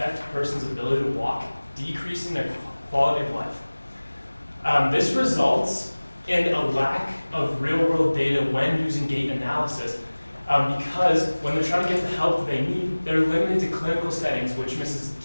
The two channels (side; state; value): both; inverted; correlation -1.00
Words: a person's ability to walk, decreasing their quality of life. This results in a lack of real-world data when using gait analysis because when they're trying to get the help they need, they're limited to clinical settings, which misses